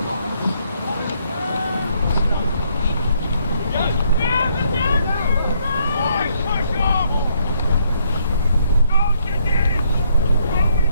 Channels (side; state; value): both; inverted; correlation -0.71